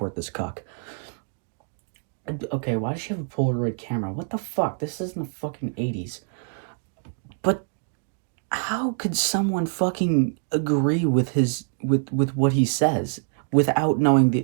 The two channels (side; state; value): left; silent; digital silence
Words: this cuck. Okay, why does she have a Polaroid camera? What the fuck? This isn't the fucking 80s. But how could someone fucking agree with with what he says without